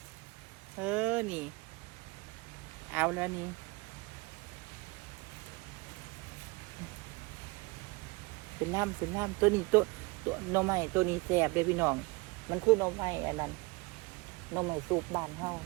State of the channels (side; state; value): left; quieter; 25.7 dB